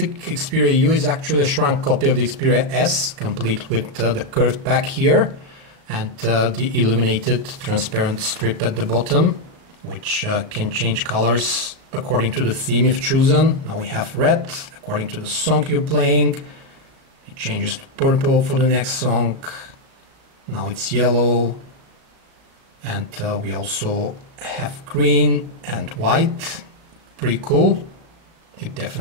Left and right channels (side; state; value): left; late; 37 ms